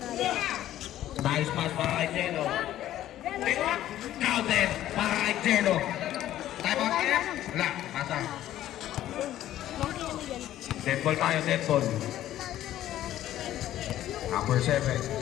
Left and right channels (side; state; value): right; quieter; 13.0 dB